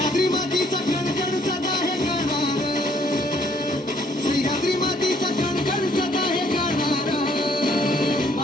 मातीचा कणकण सदा हे गाणार सह्याद्री मातीचा कणकण सदा हे गाणार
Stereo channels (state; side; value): normal; both; correlation 0.64